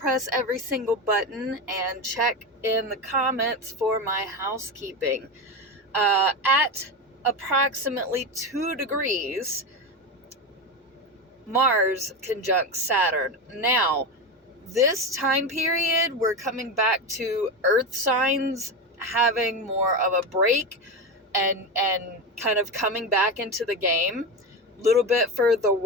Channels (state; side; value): normal; both; correlation 0.18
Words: every single button and check in the comments for my housekeeping. At approximately 2 degrees, Mars conjunct Saturn. Now, this time period, we're coming back to Earth signs having more of a break and kind of coming back into the game. A little bit for the